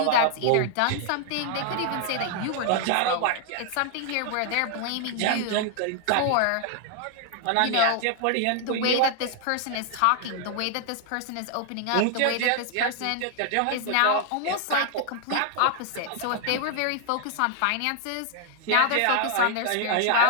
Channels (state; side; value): different; both; correlation 0.00